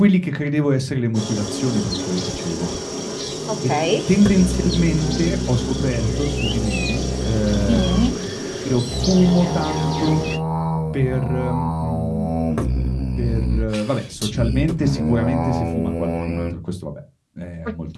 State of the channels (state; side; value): identical; both; correlation 1.00